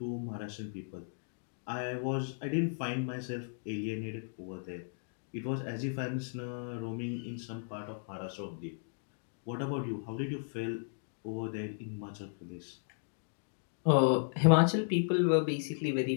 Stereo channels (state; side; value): silent; right; digital silence